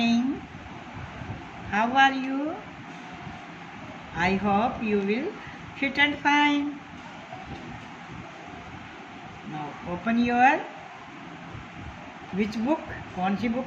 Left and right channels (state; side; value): identical; both; correlation 1.00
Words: How are you? I hope you will fit and fine. Now open your which book? कौन सी